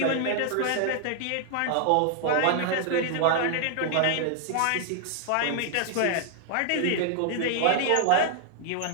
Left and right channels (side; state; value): both; different; correlation 0.00